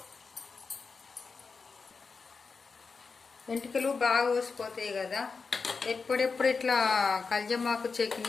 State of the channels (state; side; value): quieter; right; 4.8 dB